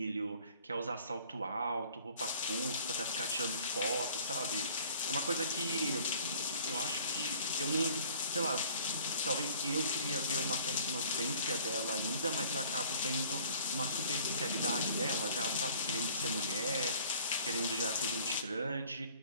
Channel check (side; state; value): both; inverted; correlation -0.53